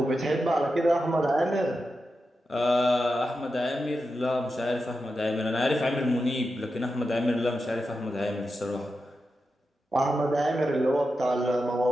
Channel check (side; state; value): both; normal; correlation 0.90